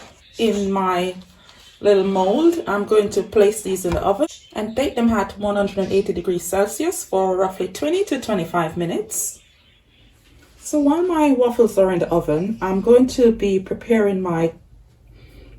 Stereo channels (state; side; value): identical; both; correlation 1.00